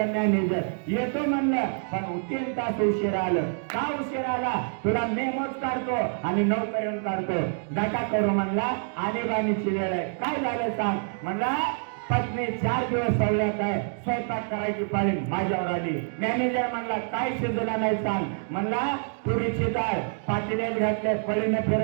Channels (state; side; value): silent; left; 60 dB below the other